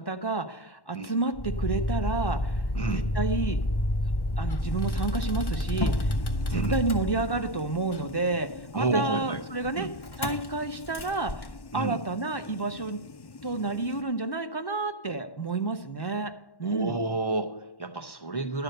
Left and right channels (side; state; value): right; late; 1.1 ms